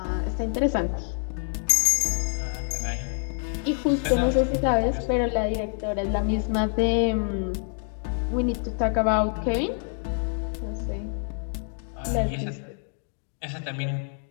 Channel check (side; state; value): right; silent; 60 dB below the other